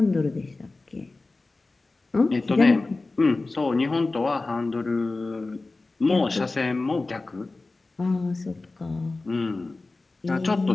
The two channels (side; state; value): right; quieter; 3.4 dB